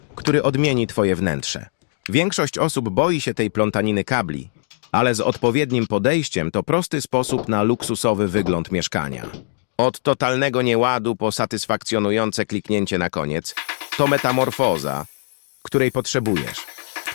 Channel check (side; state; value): right; silent; digital silence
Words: który odmieni twoje wnętrze. Większość osób boi się tej plątaniny kabli, ale z odpowiednim podejściem to prosty sposób na luksusowy wygląd mieszkania. Od totalnego nieładu po satysfakcjonujące kliknięcie na koniec, to metamorfoza, której potrzebujesz.